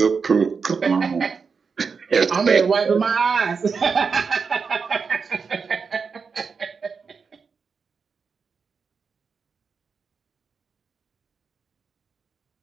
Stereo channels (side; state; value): left; quieter; 5.4 dB